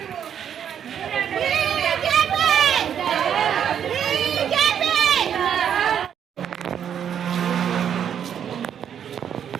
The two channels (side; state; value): left; quieter; 8.8 dB